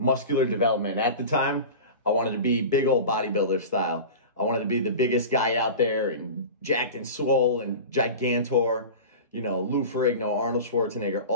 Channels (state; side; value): inverted; both; correlation -0.32